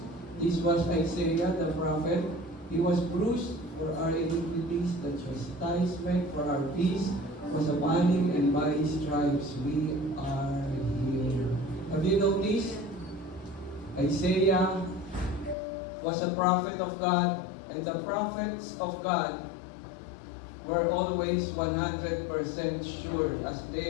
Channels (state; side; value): drops out; right; at 15.6 s